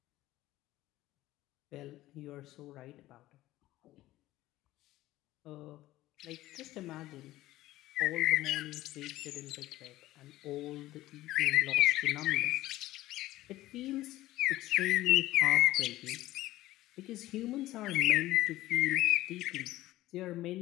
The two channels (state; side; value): quieter; right; 16.3 dB